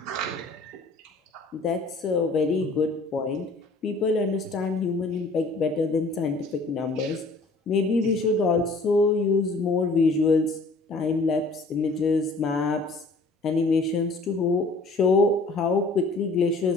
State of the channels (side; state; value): right; quieter; 3.3 dB